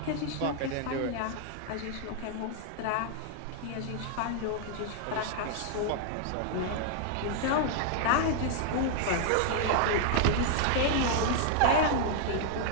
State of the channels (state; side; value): different; both; correlation 0.00